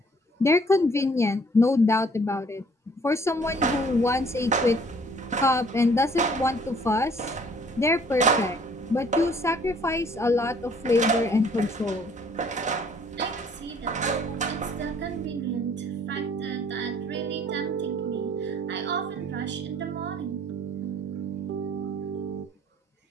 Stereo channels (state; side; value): normal; both; correlation 0.58